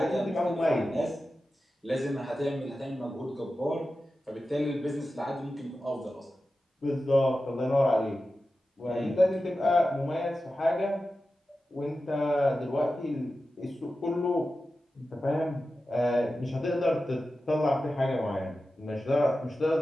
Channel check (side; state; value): both; normal; correlation 0.93